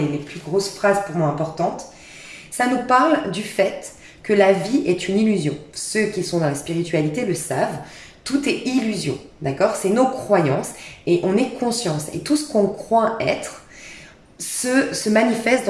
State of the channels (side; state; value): both; identical; correlation 1.00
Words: plus grosses phrases pour moi importantes. Ça nous parle du fait que la vie est une illusion. Ceux qui sont dans la spiritualité le savent. Tout est illusion, d'accord? C'est nos croyances et on est conscience. Et tout ce qu'on croit être se manifeste